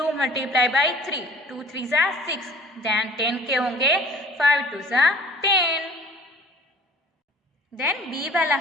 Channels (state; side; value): normal; both; correlation 0.50